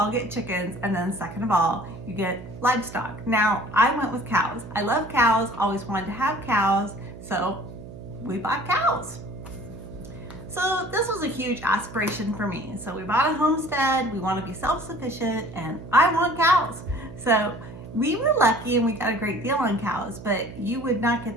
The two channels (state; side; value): noise; right; hum, 14 dB below the sound